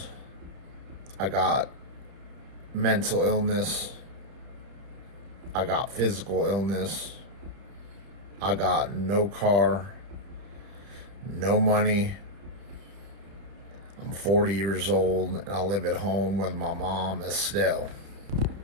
I got mental illness. I got physical illness. I got no car, no money. I'm 40 years old and I live at home with my mom, Estelle.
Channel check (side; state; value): left; late; 30 ms